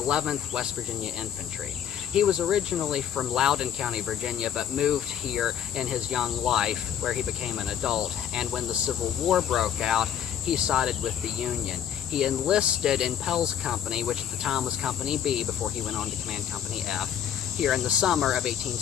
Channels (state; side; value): quieter; right; 9.6 dB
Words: West Virginia Infantry. He was originally from Loudoun County, Virginia, but moved here in his young life where he became an adult, and when the Civil War broke out, he sided with the Union. He enlisted in Pell's company, which at the time was Company B before he went on to command Company F, here in the summer of